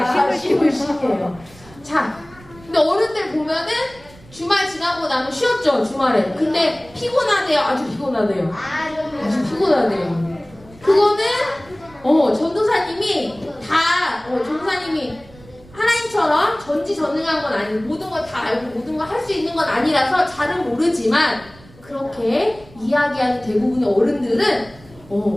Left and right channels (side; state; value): right; noise; rumble, 23 dB below the sound